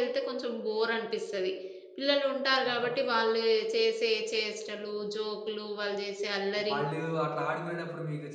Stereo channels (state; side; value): identical; both; correlation 1.00